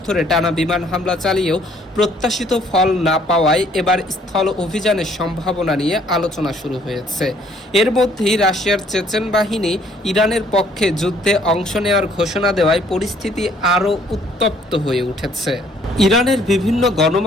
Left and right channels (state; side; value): normal; both; correlation 0.62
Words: ধরে টানা বিমান হামলা চালিয়েও প্রত্যাশিত ফল না পাওয়ায় এবার স্থল অভিযানের সম্ভাবনা নিয়ে আলোচনা শুরু হয়েছে। এর মধ্যেই রাশিয়ার চেচেন বাহিনী ইরানের পক্ষে যুদ্ধে অংশ নেওয়ার ঘোষণা দেওয়ায় পরিস্থিতি আরও উত্তপ্ত হয়ে উঠেছে। ইরানের বিভিন্ন